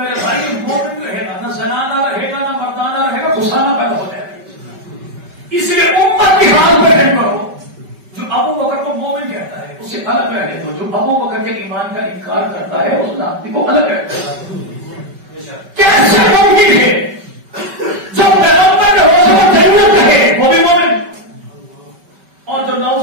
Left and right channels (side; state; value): left; late; 5.2 ms